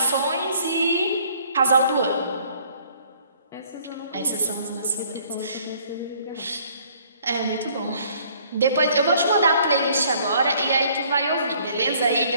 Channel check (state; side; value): inverted; both; correlation -0.60